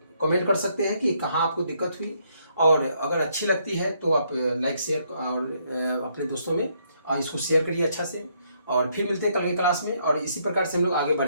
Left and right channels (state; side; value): inverted; both; correlation -0.72